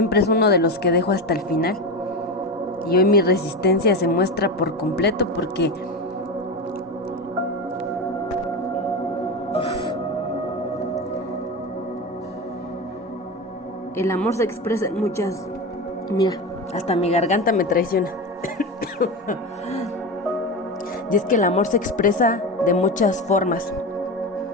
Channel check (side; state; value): both; normal; correlation 0.21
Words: es uno de los que dejo hasta el final. Y hoy mi resistencia se muestra por completo porque el amor se expresa en muchas... Mira, hasta mi garganta me traiciona. Y es que el amor se expresa de muchas formas,